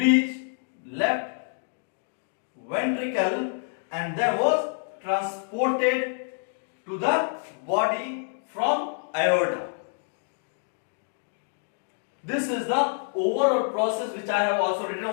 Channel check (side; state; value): right; silent; 60 dB below the other